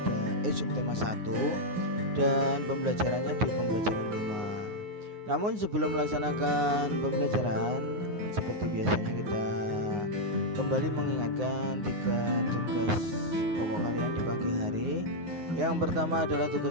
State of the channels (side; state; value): left; late; 9.6 ms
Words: dan subtema 1 dan pembelajarannya di pembelajaran 5. Namun sebelum melaksanakan pembelajaran, seperti biasanya kita kembali mengingatkan 3 tugas pokok kalian di pagi hari. Yang pertama adalah